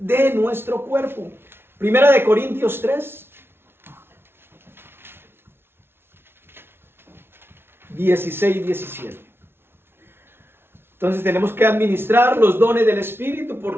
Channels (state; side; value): late; left; 0.11 ms